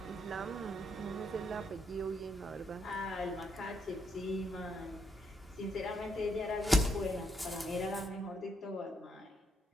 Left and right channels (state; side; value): normal; both; correlation 0.77